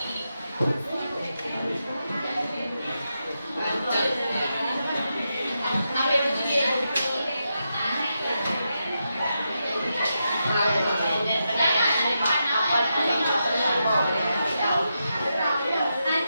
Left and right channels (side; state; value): both; inverted; correlation -0.86